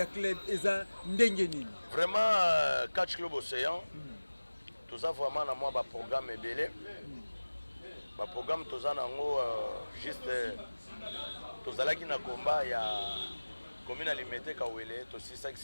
club eza ndengeni. Vraiment catch club Océan. Tout ça vraiment na moi ba programme belé. Ba programme tout ça nango juste tozalaki na combat ya commune alimentaire Kawele to 6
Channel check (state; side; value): inverted; both; correlation -1.00